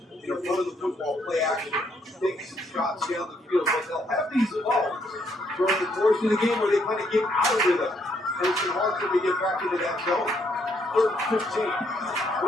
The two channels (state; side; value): normal; both; correlation 0.72